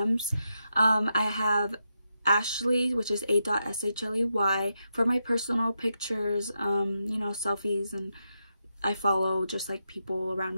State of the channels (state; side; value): inverted; both; correlation -0.85